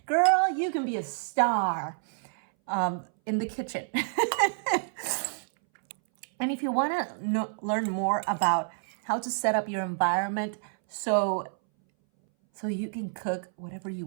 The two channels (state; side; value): silent; left; 59 dB below the other